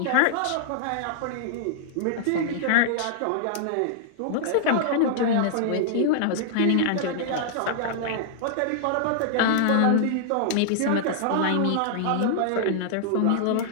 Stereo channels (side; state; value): both; different; correlation -0.01